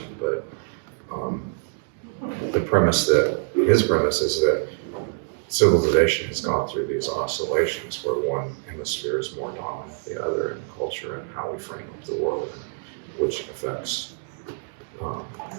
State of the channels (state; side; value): silent; left; digital silence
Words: but his premise is that civilization has gone through these oscillations where one hemisphere is more dominant than the other in culture and how we frame up the world, which affects